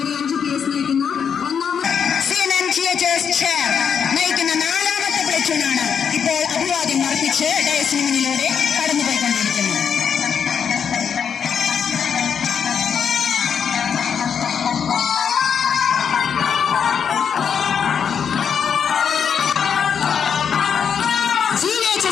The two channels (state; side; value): quieter; right; 7.3 dB